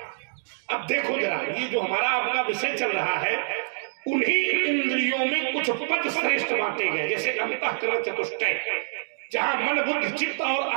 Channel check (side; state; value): left; silent; digital silence